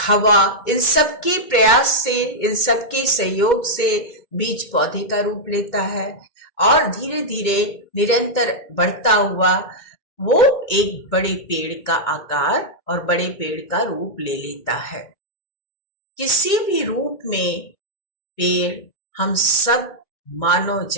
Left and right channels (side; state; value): right; late; 2.2 ms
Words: इन सब के प्रयास से, इन सब के सहयोग से बीज पौधे का रूप लेता है और धीरे धीरे निरंतर बढ़ता हुआ वो एक बड़े पेड़ का आकार और बड़े पेड़ का रूप ले लेता है। किसी भी रूप में पेड़ हम सब मानव